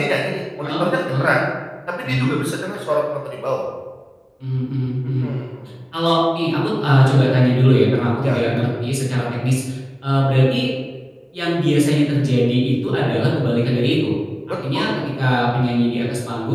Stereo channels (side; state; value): both; identical; correlation 1.00